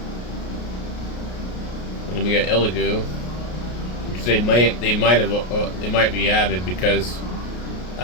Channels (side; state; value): right; late; 33 ms